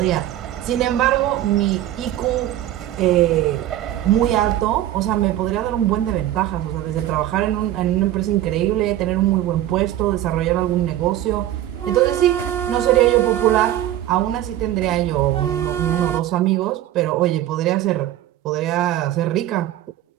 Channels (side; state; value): left; quieter; 13.0 dB